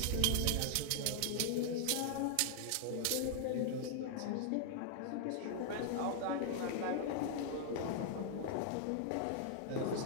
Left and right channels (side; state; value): both; different; correlation -0.01